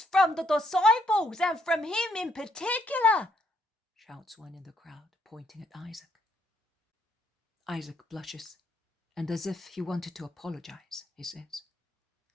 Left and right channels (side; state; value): both; normal; correlation 0.72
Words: from the disciples and from him in particular, shouts one in the crowd, pointing at Isaac. Isaac blushes, and as if he wanted to apologize, he says,